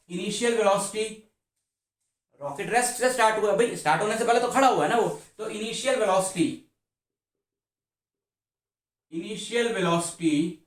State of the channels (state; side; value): identical; both; correlation 1.00